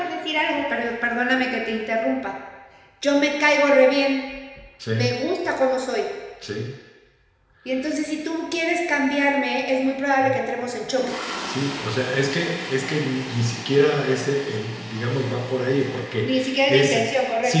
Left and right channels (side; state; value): both; identical; correlation 1.00